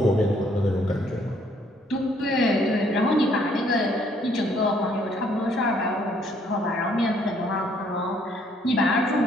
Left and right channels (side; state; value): both; normal; correlation 0.66